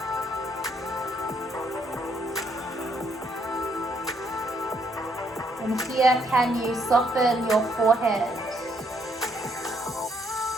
And here, can you soften your forehead,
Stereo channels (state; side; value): normal; both; correlation 0.71